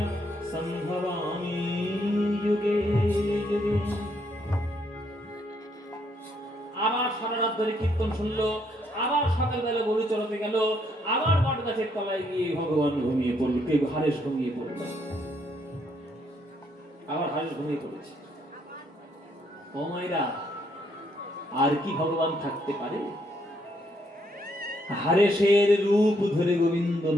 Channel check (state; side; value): normal; both; correlation 0.72